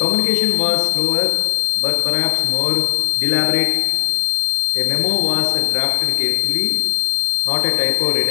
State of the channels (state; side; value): silent; right; 68 dB below the other